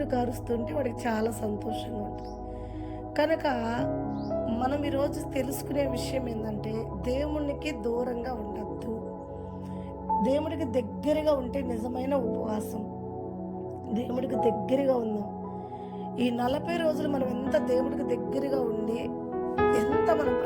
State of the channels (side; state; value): both; identical; correlation 1.00